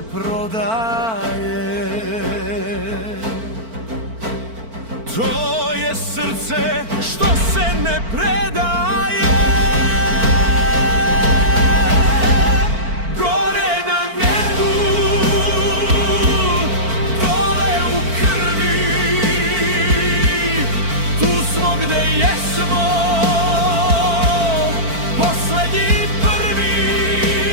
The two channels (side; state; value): left; late; 4.5 ms